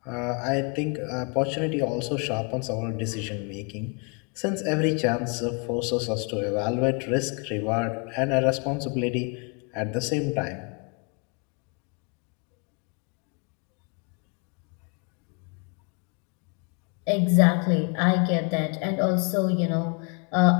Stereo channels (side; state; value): right; quieter; 34.9 dB